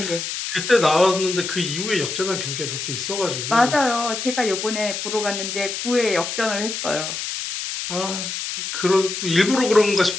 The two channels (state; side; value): noise; left; hiss, 5 dB below the sound